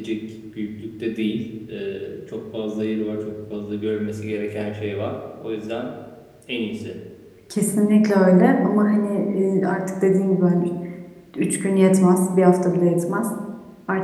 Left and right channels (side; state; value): both; identical; correlation 1.00